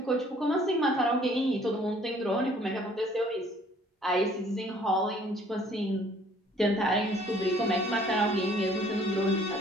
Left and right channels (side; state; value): both; normal; correlation 0.58